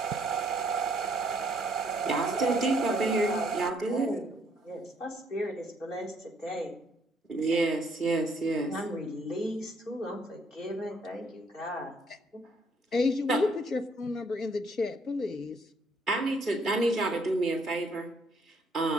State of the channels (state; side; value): normal; both; correlation 0.67